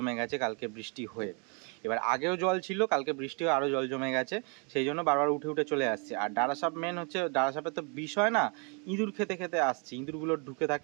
গেছে কালকে বৃষ্টি হয়ে। এবার আগেও জল ছিল, কালকে বৃষ্টি হয়ে আরও জল জমে গেছে, সেই জন্য বারবার উঠে উঠে চলে আসছে। আর ডাঁড়া সাপ মেন হচ্ছে, ডাঁড়া সাপের তো বিষয় না, ইঁদুর খেতে খেতে আসছে, ইঁদুরগুলো ঢুকে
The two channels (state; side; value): quieter; left; 35.7 dB